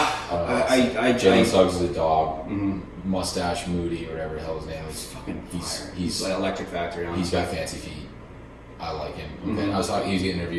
I Jalen Suggs is a dog. mhm. Mustache Moody, whatever the hell his name is. Fucking He's- fire. he's- like Electric Factory on. He's got fancy feet. I like him. Okay. Mhm. I was talking. He was getting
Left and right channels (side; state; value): both; identical; correlation 1.00